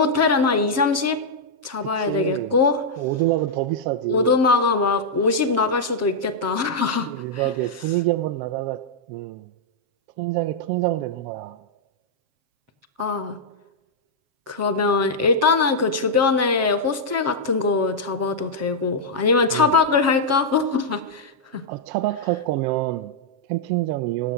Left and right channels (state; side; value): late; left; 7.5 ms